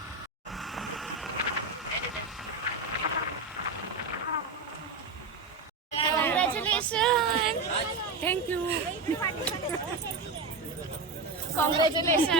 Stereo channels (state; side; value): quieter; left; 3.7 dB